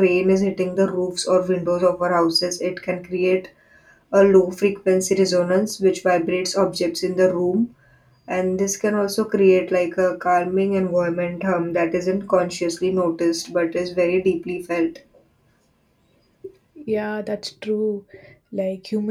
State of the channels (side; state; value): both; identical; correlation 1.00